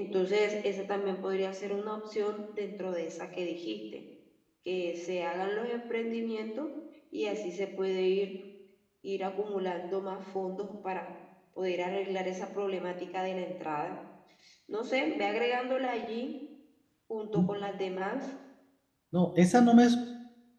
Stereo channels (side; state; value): both; identical; correlation 1.00